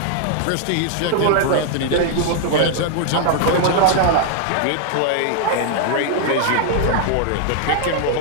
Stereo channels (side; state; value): both; different; correlation 0.00